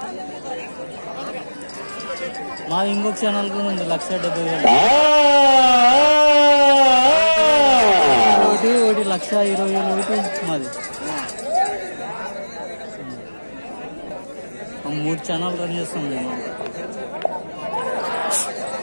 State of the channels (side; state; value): both; inverted; correlation -1.00